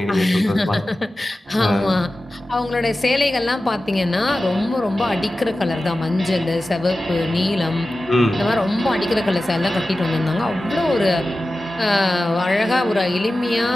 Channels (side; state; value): both; normal; correlation 0.95